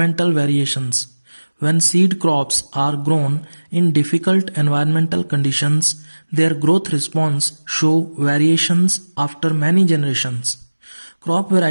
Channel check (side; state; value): both; inverted; correlation -1.00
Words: variations. When seed crops are grown in difficult environmental conditions, their growth response show variations after many generations. Crop